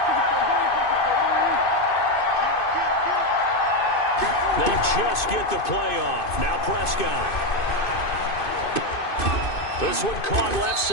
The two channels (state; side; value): late; right; 2.5 ms